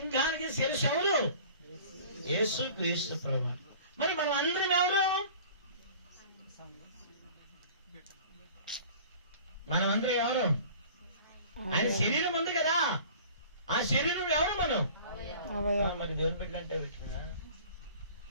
శిరస్సు ఎవరు? యేసు క్రీస్తు ప్రభువు. మరి మనం అందరం ఎవరు? మనం అందరం ఎవరు? ఆయన శరీరం ఉంది కదా, ఆ శరీరం ఎవరు? మనం మరి దేవుని బిడ్డ అంటే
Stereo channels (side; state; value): both; inverted; correlation -0.45